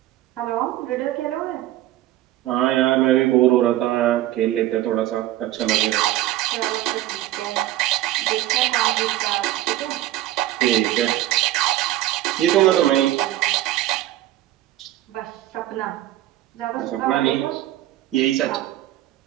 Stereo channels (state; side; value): quieter; left; 14.7 dB